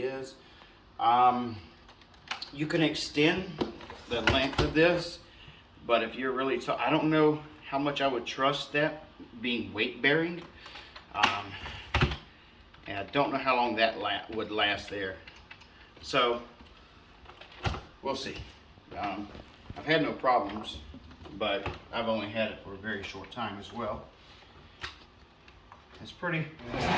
is. You can extend the length of this, but if you're really I don't know how much I would trust that being weight bearing, and I don't know how long that would last there. So we'll see. I've had no problems, but I've only had it for a very short time as well. It's pretty loud.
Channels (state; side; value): identical; both; correlation 1.00